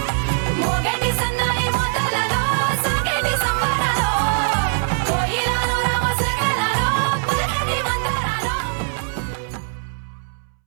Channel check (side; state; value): left; silent; 65 dB below the other